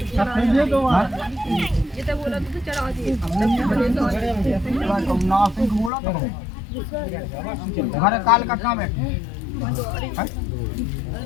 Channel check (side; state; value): right; drops out; at 5.9 s